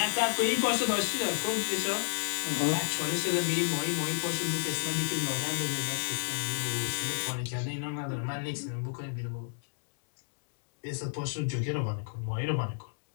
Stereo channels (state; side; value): silent; right; digital silence